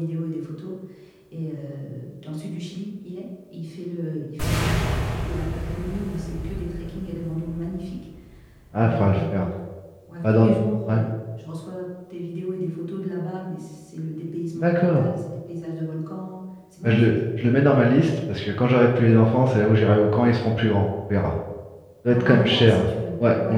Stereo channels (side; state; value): both; identical; correlation 1.00